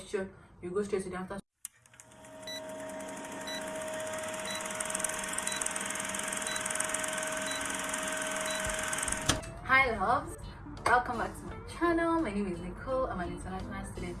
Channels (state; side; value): identical; both; correlation 1.00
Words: you go straight to the answer. Hi loves, welcome back to my channel. My name is Nicole. I'm an international student